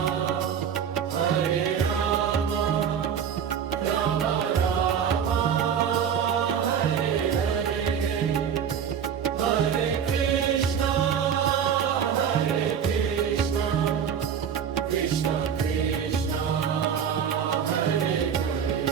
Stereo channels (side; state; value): left; quieter; 7.9 dB